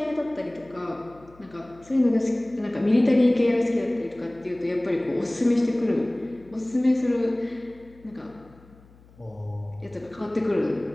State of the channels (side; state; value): left; noise; hum, 26 dB below the sound